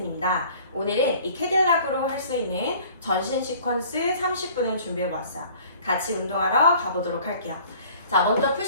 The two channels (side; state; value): both; inverted; correlation -0.50